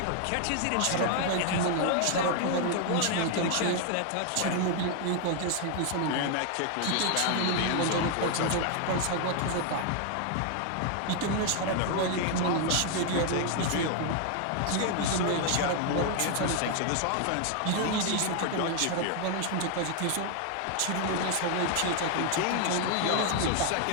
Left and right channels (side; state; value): both; different; correlation 0.00